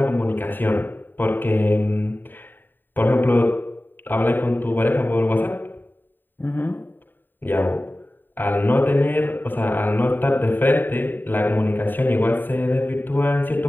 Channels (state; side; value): late; right; 0.092 ms